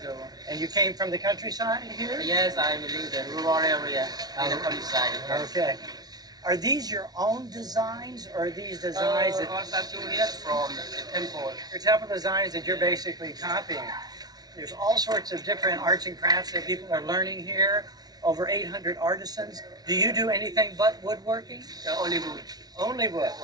ago. And you came from the countryside here? Yes, I live in the rural area in the countryside. Okay. Are these your own designs, or are these designs that... All statue here from the temple. Your temple designs that you're basically copying. There's all sorts of different arts and crafts that people are learning here. Over 800 artisans. Do you do anything but woodworking? Only wood. Only wood.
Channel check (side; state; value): left; late; 0.19 ms